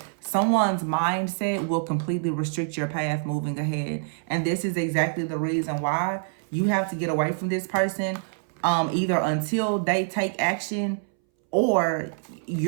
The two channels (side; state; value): left; silent; 61 dB below the other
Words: Someone's mindset will completely restrict your path moving ahead. And this is exactly the reason why you have to get away from this person, either until they take action, or